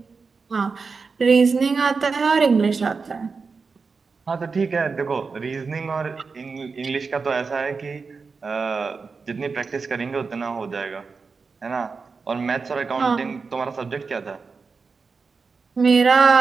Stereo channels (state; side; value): quieter; left; 4.8 dB